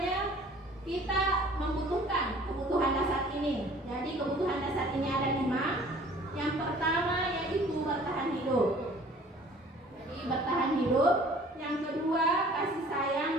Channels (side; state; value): both; normal; correlation 0.51